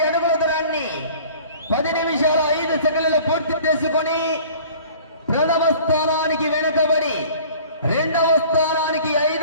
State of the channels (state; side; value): inverted; both; correlation -0.47